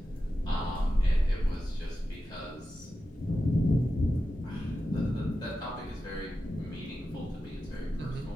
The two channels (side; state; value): both; normal; correlation 0.92